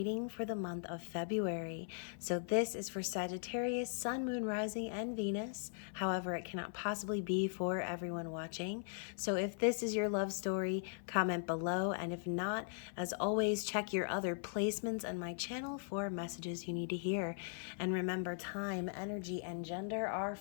for the month of February. So this is for Sagittarius, Sun, Moon, Rising, and Venus. However, it cannot possibly be for everyone watching. So if this is your love story, comment below. And if not, as always, check your other placements on my channel for messages you need to hear. And remember, time, energy, and gender are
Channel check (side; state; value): right; silent; 52 dB below the other